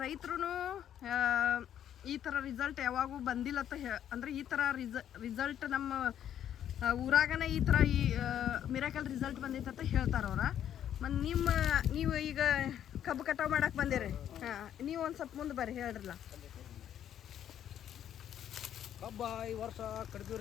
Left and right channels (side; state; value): right; quieter; 10.2 dB